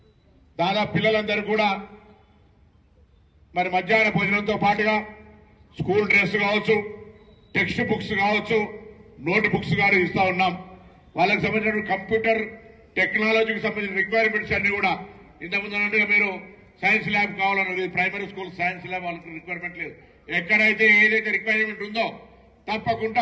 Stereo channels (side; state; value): both; identical; correlation 1.00